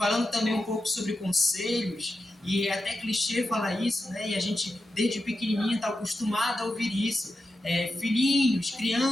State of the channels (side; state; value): both; normal; correlation 0.90